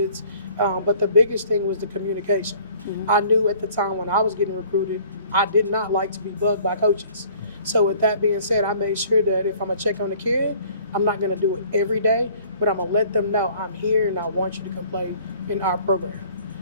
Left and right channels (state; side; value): inverted; both; correlation -0.54